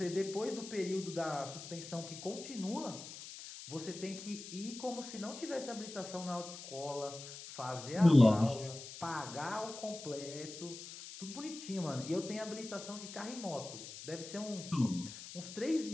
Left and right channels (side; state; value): left; noise; hiss, 12 dB below the sound